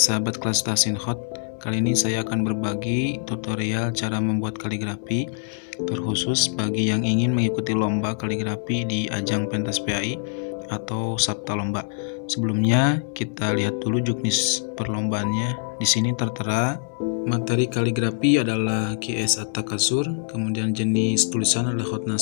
kelas Tasinhot, kali ini saya akan berbagi tutorial cara membuat kaligrafi terkhusus bagi yang ingin mengikuti lomba kaligrafi di ajang pentas PAI atau sabta lomba. Sebelumnya kita lihat dulu juknis perlombaannya. Di sini tertera materi kaligrafi adalah At-Atakatsur, kemudian jenis tulisan adalah hot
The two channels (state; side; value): silent; right; 63 dB below the other